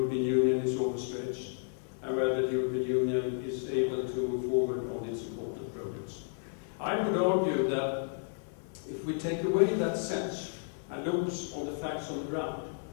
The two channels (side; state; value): right; silent; digital silence